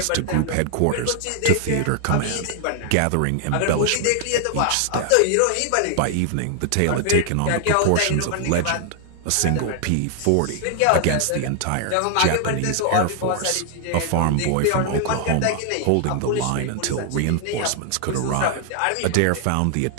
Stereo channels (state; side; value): different; both; correlation 0.00